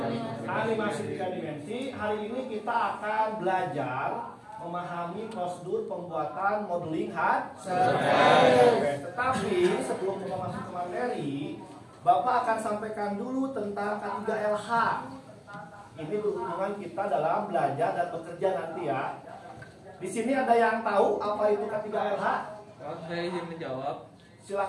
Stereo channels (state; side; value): identical; both; correlation 1.00